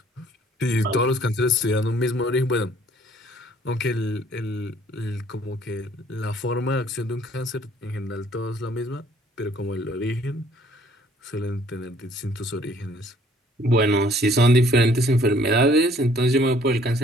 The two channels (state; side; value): normal; both; correlation 0.59